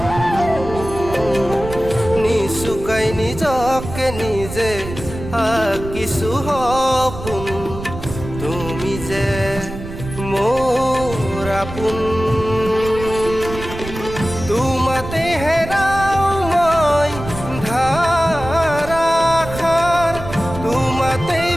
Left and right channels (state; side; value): noise; right; rumble, 10 dB below the sound